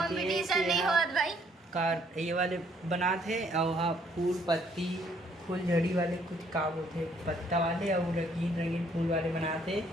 ये नहीं हुआ भाई कार ये वाले बना थे। और हाँ फूल पत्ती फूल झड़ी वाले कुछ काम होते पत्ता वाले और रंगीन रंगीन फूल वाले बनाते।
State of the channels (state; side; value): normal; both; correlation 0.65